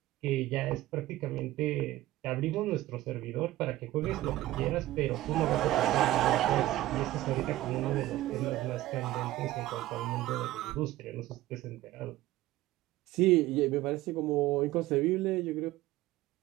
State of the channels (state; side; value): quieter; left; 16.0 dB